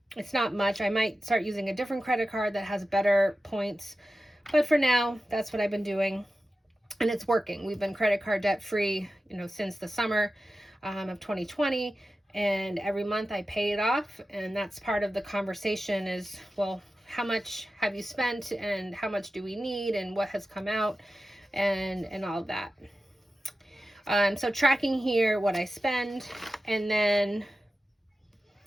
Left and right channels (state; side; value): normal; both; correlation 0.93